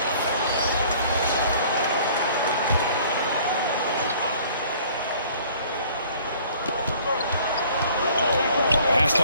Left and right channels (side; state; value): both; inverted; correlation -0.54